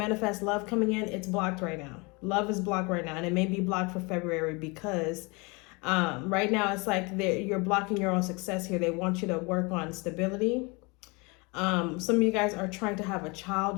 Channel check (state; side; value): quieter; right; 28.3 dB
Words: love coming in. It's blocked right now. Love is blocked right now, and it may be blocked for February because right now it's like you're blocking your own success here. They want you to work on stability. Some of you guys are trying to have a child